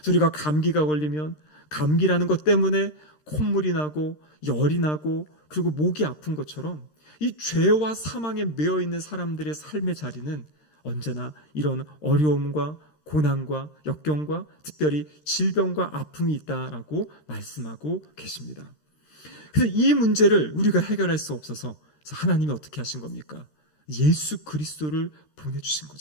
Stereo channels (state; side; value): late; right; 13 ms